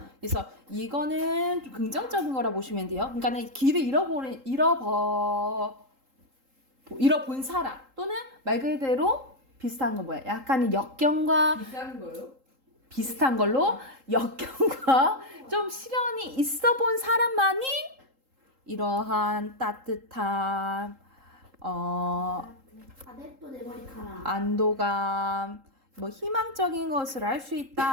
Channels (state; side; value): late; left; 3.8 ms